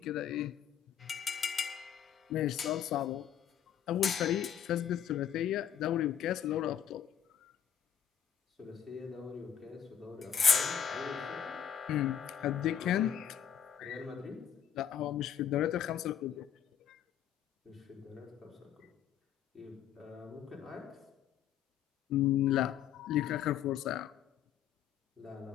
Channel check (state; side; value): quieter; right; 8.9 dB